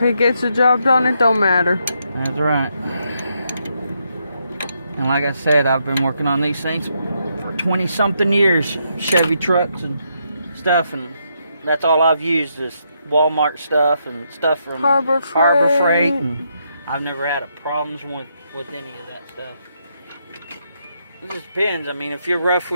gets the job done, it don't matter. That's right. And like I said, I've been working on these things for 20 something years. Chevy trucks and stuff, and that's all I've used is Walmart stuff and stuff from Harbor Freight. And I've never had a problems with any of that stuff. It just depends. I mean, if you're rough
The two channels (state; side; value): inverted; both; correlation -0.78